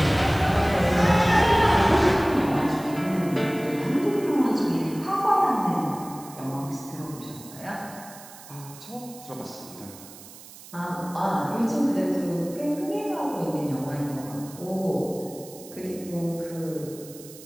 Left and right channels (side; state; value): right; noise; hiss, 18 dB below the sound